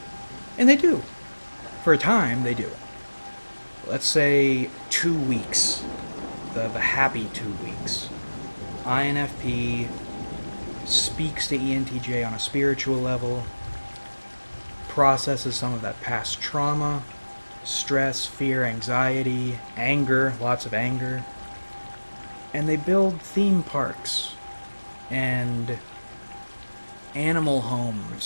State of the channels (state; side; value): inverted; both; correlation -1.00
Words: And they do. For a time, they do. Let's say 2 weeks. The happy 2 weeks. INFP speaks to ENTJ on a spiritual level, processes some of that past trauma, stress, fear, anxiety, anger, lots of anger, and they build theme parks and animal